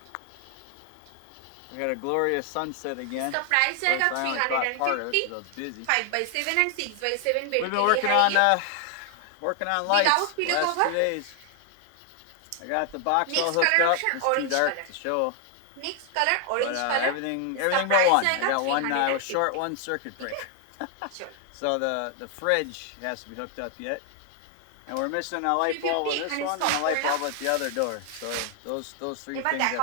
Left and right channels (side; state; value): both; different; correlation 0.00